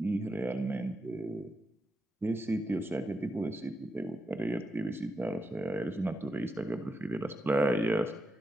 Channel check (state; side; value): normal; both; correlation 0.86